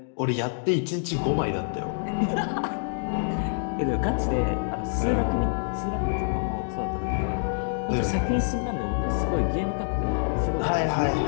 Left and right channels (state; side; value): silent; right; digital silence